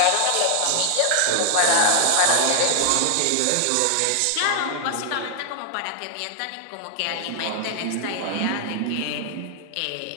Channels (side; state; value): both; different; correlation 0.00